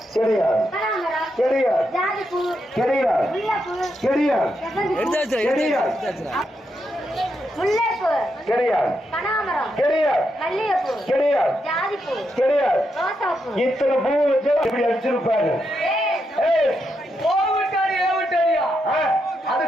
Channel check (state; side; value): normal; both; correlation 0.82